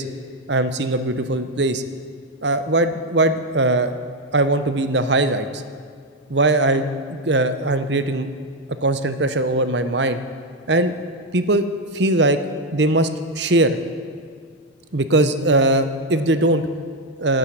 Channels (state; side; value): normal; both; correlation 0.05